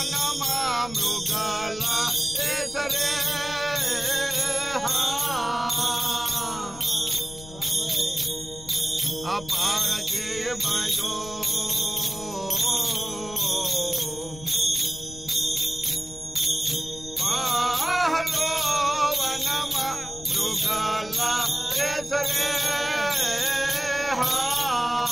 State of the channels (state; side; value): noise; left; rumble, 16 dB below the sound